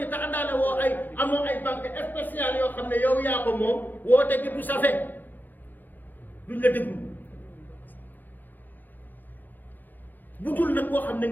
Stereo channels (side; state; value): right; late; 0.087 ms